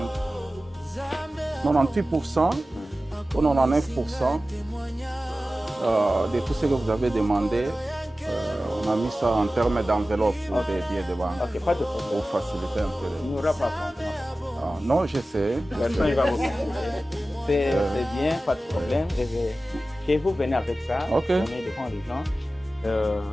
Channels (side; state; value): both; normal; correlation 0.95